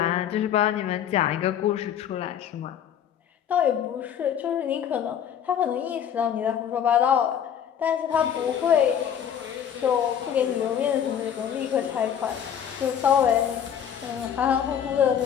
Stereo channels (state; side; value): quieter; right; 9.0 dB